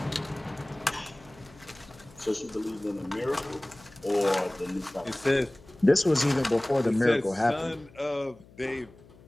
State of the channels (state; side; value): noise; left; hum, 24 dB below the sound